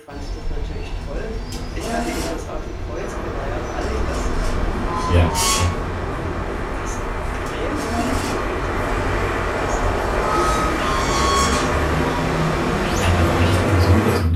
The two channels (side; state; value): both; identical; correlation 1.00